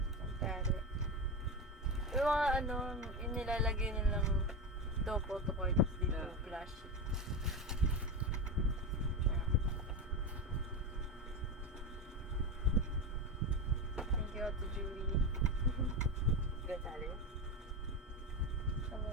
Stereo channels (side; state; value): both; normal; correlation 0.17